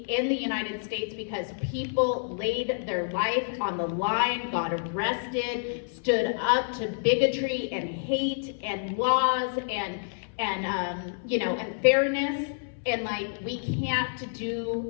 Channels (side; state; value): right; silent; 59 dB below the other